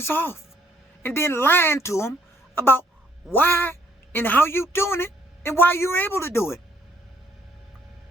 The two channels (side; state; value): both; normal; correlation 0.67